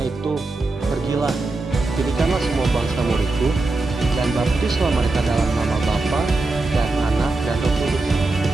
itu, pergilah, jadikanlah semua bangsa muridku, dan baptislah mereka dalam nama Bapa dan Anak dan Roh Kudus,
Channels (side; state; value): left; quieter; 3.2 dB